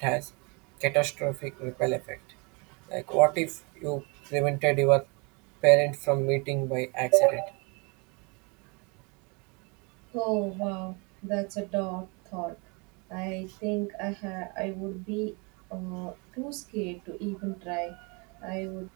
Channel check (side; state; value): left; quieter; 31.0 dB